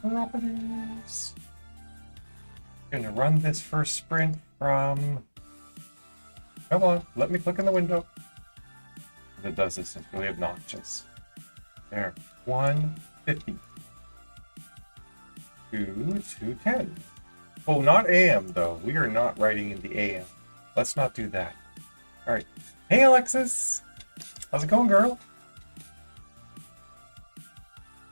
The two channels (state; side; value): inverted; both; correlation -1.00